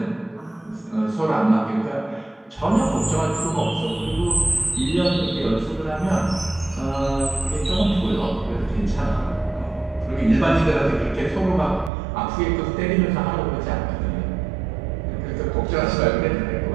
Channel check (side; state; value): left; drops out; at 11.9 s